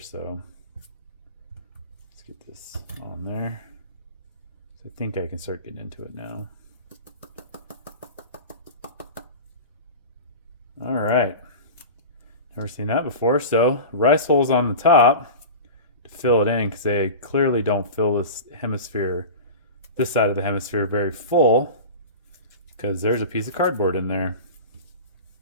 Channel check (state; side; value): inverted; both; correlation -0.31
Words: let's get this on there. I think I can start getting into it now. All right, never seen that before. So rice holes on the top to fill it in, because they clearly don't fill this hemisphere, this side of the hemisphere, very full, because there's a piece of cardboard in there.